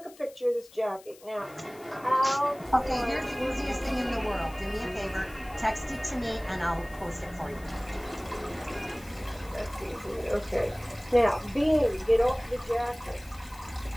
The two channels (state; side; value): noise; left; hiss, 23 dB below the sound